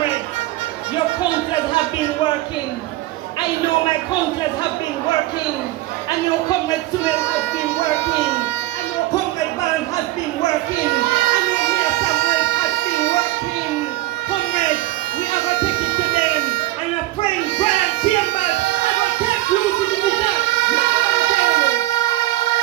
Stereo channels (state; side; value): quieter; left; 17.4 dB